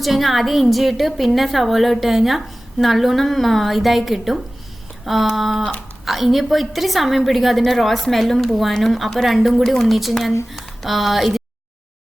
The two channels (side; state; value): both; normal; correlation 0.97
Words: കഴിഞ്ഞാൽ ആദ്യം ഇഞ്ചി ഇട്ട് പിന്നെ സവോള ഇട്ട് കഴിഞ്ഞാൽ നല്ലോണം ഇതായി കിട്ടും. ഇനിയിപ്പോൾ ഇത്തിരി സമയം പിടിക്കും അതിൻ്റെ റോ സ്മെല്ലും പോവാനും. അപ്പോൾ രണ്ടും കൂടി ഒന്നിച്ച് ഞാൻ ഇത്